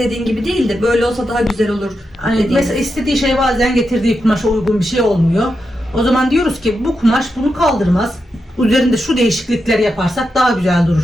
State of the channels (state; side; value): normal; both; correlation 0.87